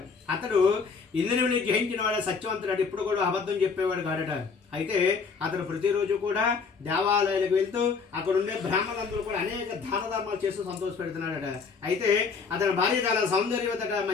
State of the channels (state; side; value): quieter; right; 5.2 dB